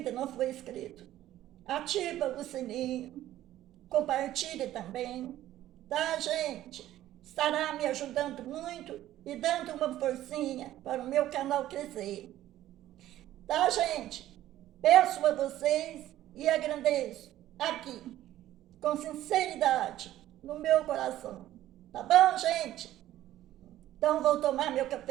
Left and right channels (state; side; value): quieter; left; 13.7 dB